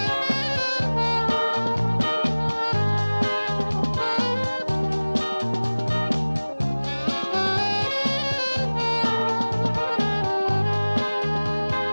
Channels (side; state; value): both; inverted; correlation -1.00